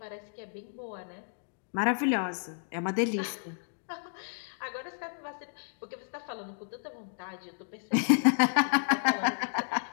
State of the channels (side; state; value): right; silent; digital silence